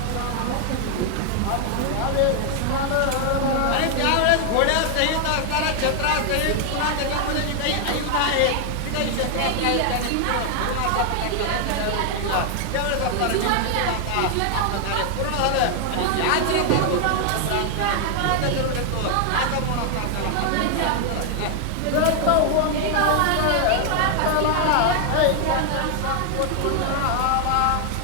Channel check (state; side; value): different; both; correlation 0.00